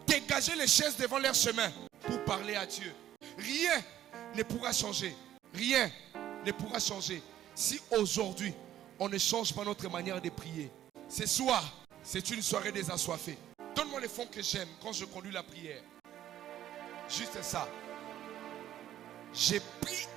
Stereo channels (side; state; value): left; quieter; 12.0 dB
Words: dégager les chaises devant leur chemin pour parler à Dieu. Rien ne pourra changer. Rien ne pourra changer si aujourd'hui on ne change pas notre manière de prier. Ce soir, c'est une soirée des assoiffés. Donne-moi les fonds que j'aime quand je conduis la prière. Juste ça. J'ai pris